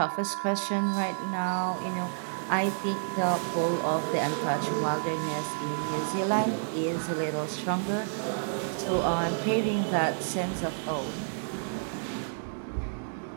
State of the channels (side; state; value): left; silent; digital silence